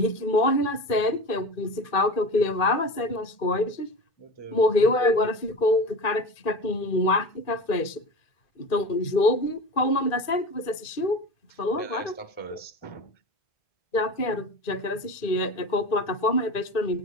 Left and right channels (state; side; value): late; right; 2.4 ms